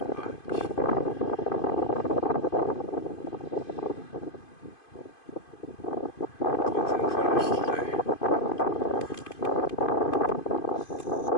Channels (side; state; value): right; late; 2.5 ms